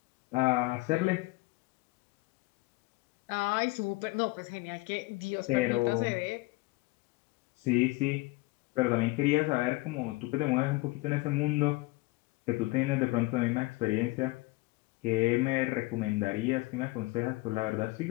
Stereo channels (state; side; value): quieter; right; 22.3 dB